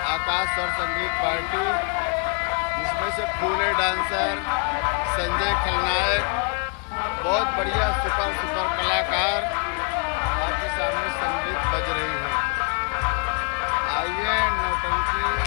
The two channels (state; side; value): quieter; right; 36.9 dB